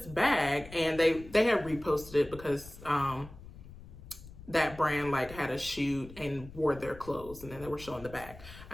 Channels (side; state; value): left; noise; rumble, 16 dB below the sound